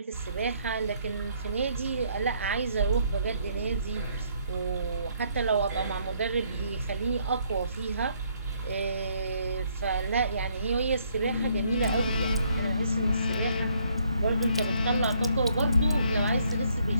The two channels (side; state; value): both; inverted; correlation -0.68